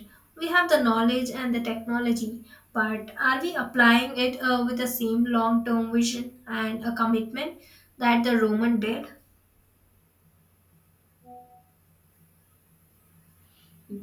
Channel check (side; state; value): both; identical; correlation 1.00